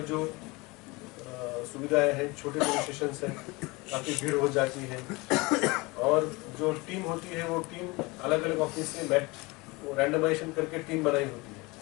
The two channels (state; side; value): quieter; right; 24.4 dB